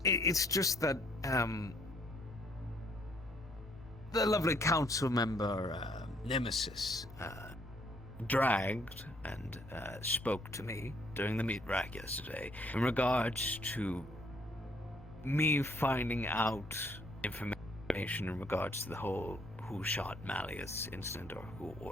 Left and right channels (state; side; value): normal; both; correlation 0.66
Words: It's just that, the lovely council member, Nemesis, dragged and spoke to me during the meat rack yesterday in regards to me finding out information in regards to the whole who shot Malleus incident or who